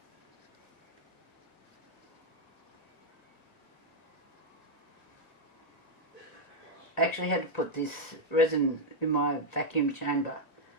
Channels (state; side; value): late; right; 1.9 ms